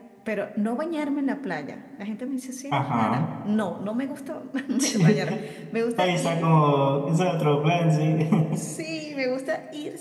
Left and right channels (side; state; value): both; identical; correlation 1.00